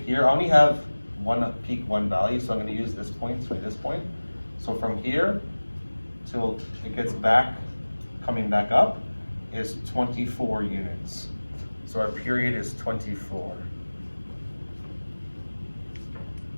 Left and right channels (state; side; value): inverted; both; correlation -1.00